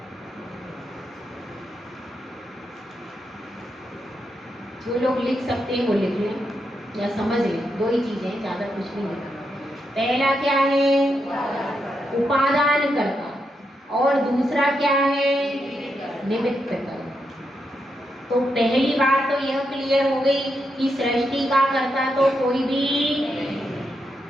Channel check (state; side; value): normal; both; correlation 0.83